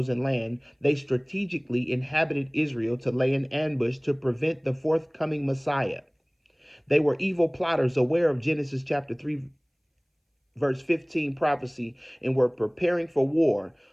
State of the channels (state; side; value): identical; both; correlation 1.00